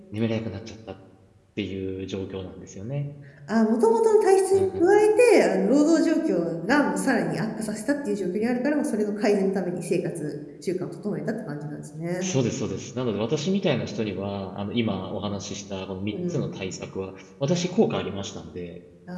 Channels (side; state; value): both; identical; correlation 1.00